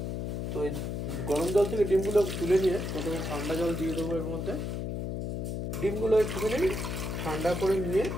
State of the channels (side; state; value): left; noise; hum, 3 dB below the sound